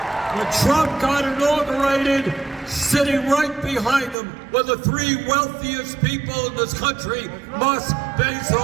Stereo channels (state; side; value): drops out; left; at 4.2 s